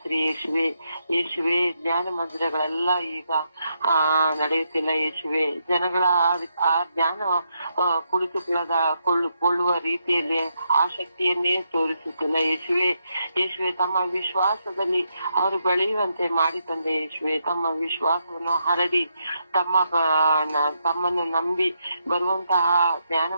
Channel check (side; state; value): both; inverted; correlation -0.80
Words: ಯೇಸುವೆ ಧ್ಯಾನ ಮಂದಿರಗಳೆಲ್ಲ ಈಗ ನಡೆಯುತ್ತಿಲ್ಲ ಯೇಸುವೆ. ಜನಗಳ ಆ ಧ್ಯಾನ ಕುಳಿತುಕೊಳ್ಳುವ ರೀತಿಯಲ್ಲಿ ಆಸಕ್ತಿಯನ್ನೇ ತೋರಿಸುತ್ತಿಲ್ಲ ಯೇಸುವೆ ತಮ್ಮ ವಿಶ್ವಾಸದಲ್ಲಿ ಅವರು ಬೆಳೆಯುವಂತೆ ಮಾಡಿ ತಂದೆ. ಯೇಸುವೆ ತಮ್ಮ ವಿಶ್ವಾಸವನ್ನು ಹರಡಿ ತಮ್ಮನ್ನು ನಂಬಿ ಬರುವಂತಹ ಧ್ಯಾನ